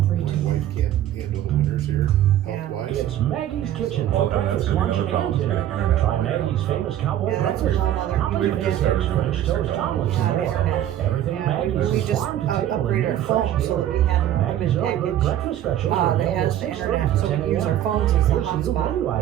My 716-445-3132. wife can't handle the winters here. health-wise. It's Maggie's Kitchen Well, for and that's breakfast, gonna be lunch, another problem, and is dinner. getting internet. Try Maggie's famous cowboy Yeah, that's breakfast. a whole other- Toppings We with just eggs, started French toast, doing omelets, Yeah, and the more. internet. Everything at Maggie's We is just farm to table and upgraded our made fresh phone so that daily. we had an Maggie's unlimited early bird package breakfast specials are that available has the 6:30 internet, to so 10 we use our a.m. phones as the Here's some new menu hotspot.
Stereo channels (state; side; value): quieter; left; 11.8 dB